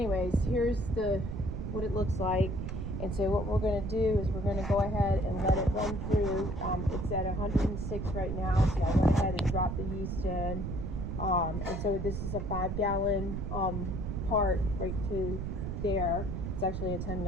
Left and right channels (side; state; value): right; noise; rumble, 3 dB below the sound